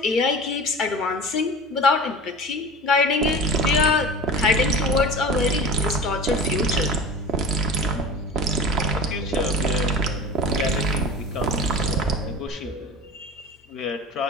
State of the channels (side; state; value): both; normal; correlation 0.34